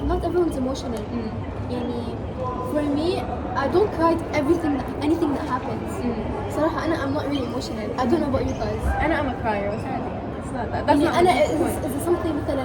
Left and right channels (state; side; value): identical; both; correlation 1.00